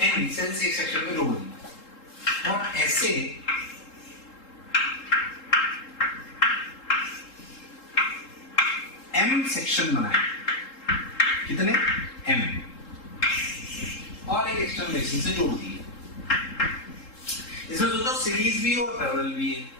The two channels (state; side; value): late; right; 3.7 ms